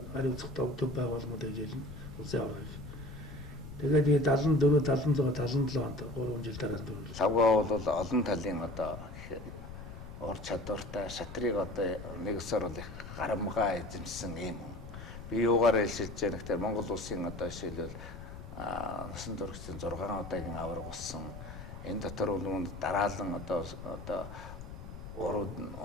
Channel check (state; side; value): noise; left; rumble, 12 dB below the sound